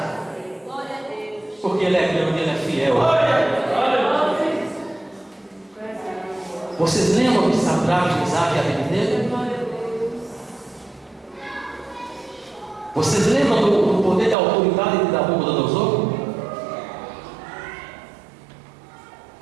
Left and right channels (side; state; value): left; drops out; at 14.4 s